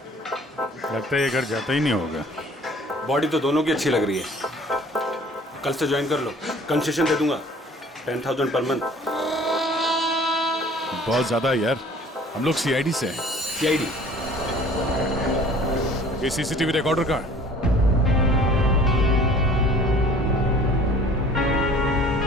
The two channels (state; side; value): normal; both; correlation 0.51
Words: लगता है ये घर जाता ही नहीं होगा। बॉडी तो दोनों की अच्छी लग रही है। कल से ज्वाइन कर लो, कंसेशन दे दूंगा 10,000 पर मंथ। बहुत ज्यादा है यार, हम लोग सीआईडी से हैं। सीआईडी? ये सीसीटीवी रिकॉर्डर कहाँ है?